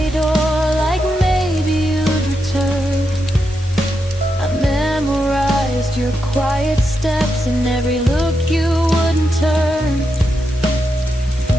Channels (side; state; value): both; normal; correlation 0.85